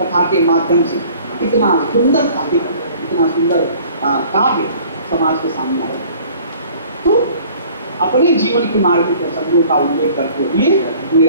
के माध्यम से इतना सुंदर साहित्य, इतना सुंदर काव्य समाज के सामने आया। तो अपने जीवन के मार्मिक प्रसंगों का उल्लेख करते हुए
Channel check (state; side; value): inverted; both; correlation -0.51